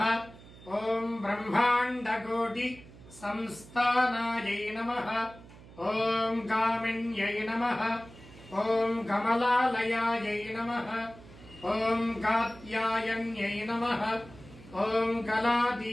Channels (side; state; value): right; noise; hum, 19 dB below the sound